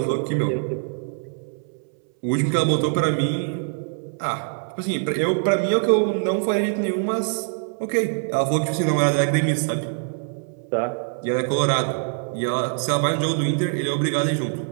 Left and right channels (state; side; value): silent; left; 63 dB below the other